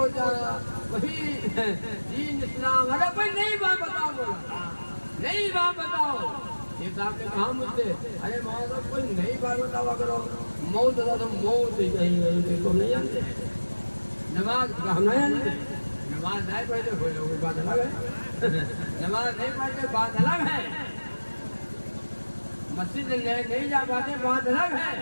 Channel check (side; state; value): both; inverted; correlation -1.00